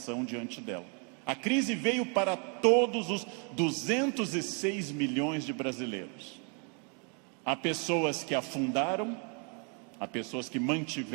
diante dela. A crise veio para todos os 206 milhões de brasileiros. Há pessoas que afundaram, há pessoas que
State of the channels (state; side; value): quieter; left; 37.8 dB